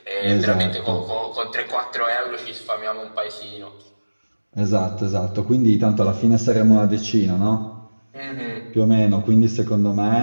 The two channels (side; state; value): both; inverted; correlation -1.00